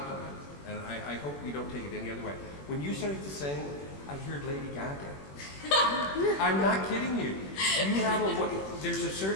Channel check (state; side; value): late; right; 21 ms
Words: and I hope you don't take it any other way. When you started to sing, I heard Lady Gaga. I'm not kidding you. You have there's a